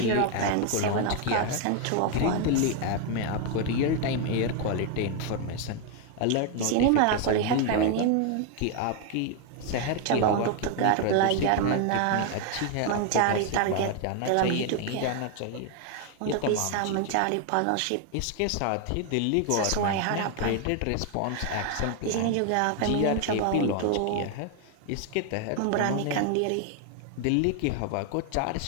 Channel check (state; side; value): different; both; correlation 0.01